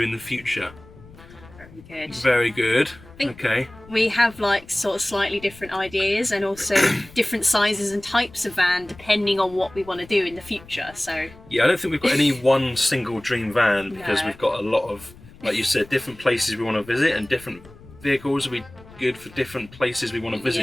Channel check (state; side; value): noise; left; rumble, 21 dB below the sound